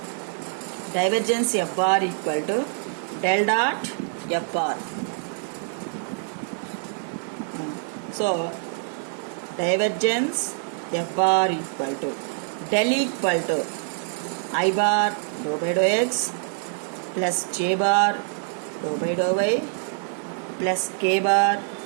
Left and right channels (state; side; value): silent; left; 62 dB below the other